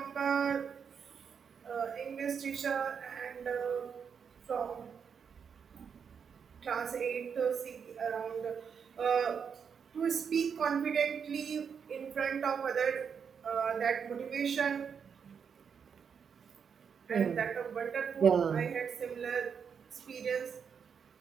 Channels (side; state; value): left; quieter; 6.8 dB